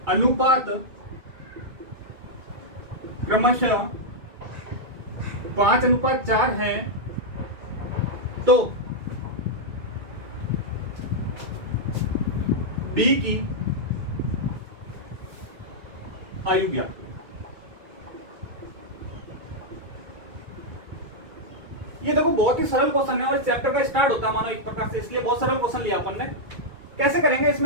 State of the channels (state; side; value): late; left; 2.3 ms